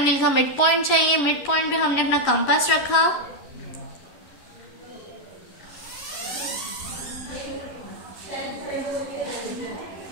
का मिड पॉइंट चाहिए। मिड पॉइंट पे हमने अपना कंपास रखा,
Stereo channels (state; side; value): late; right; 11 ms